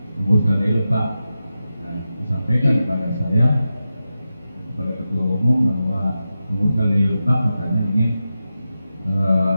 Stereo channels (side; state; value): both; inverted; correlation -0.91